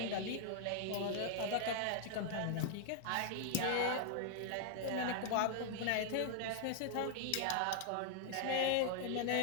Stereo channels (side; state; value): both; different; correlation -0.01